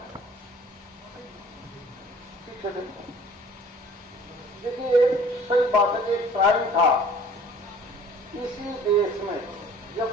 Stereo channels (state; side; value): normal; both; correlation 0.51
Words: देखिए, एक सही बात है कि एक टाइम था इसी देश में जब